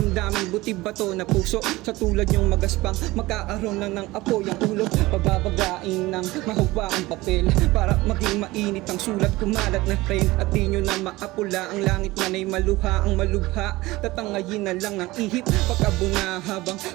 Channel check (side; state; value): left; quieter; 19.7 dB